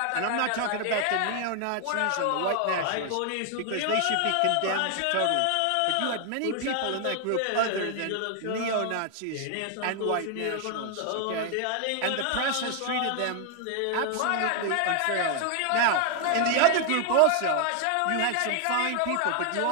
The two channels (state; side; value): different; both; correlation 0.00